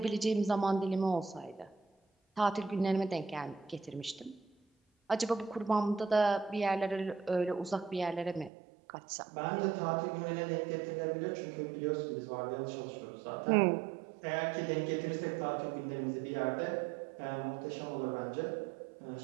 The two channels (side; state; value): left; drops out; at 8.5 s